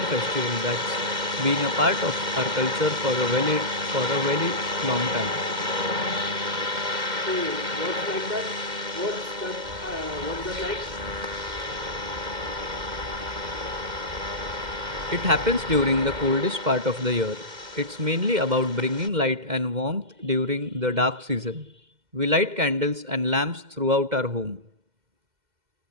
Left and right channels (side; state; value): left; late; 2.1 ms